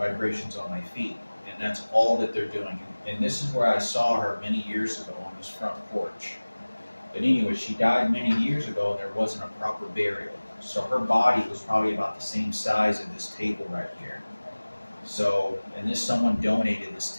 vibrations on my feet, and that's all that they're doing. And this is where I saw her many years ago on this front porch. But anyway, she died many years ago, and there wasn't a proper burial. So her body was probably about the same size of this table right here. So, and someone donated this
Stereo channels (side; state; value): both; inverted; correlation -1.00